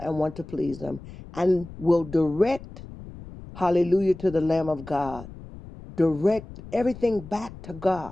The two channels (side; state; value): left; noise; rumble, 15 dB below the sound